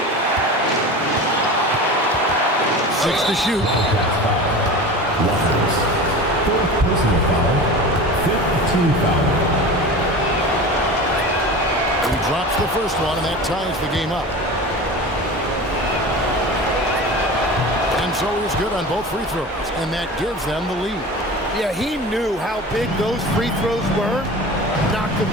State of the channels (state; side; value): normal; both; correlation 0.33